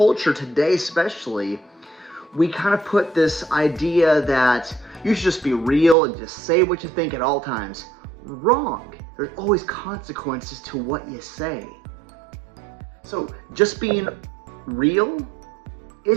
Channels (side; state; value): left; drops out; at 6.0 s